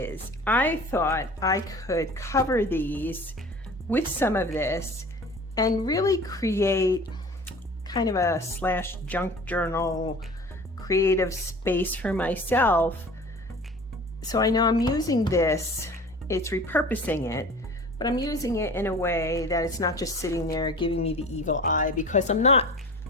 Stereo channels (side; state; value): both; normal; correlation 0.41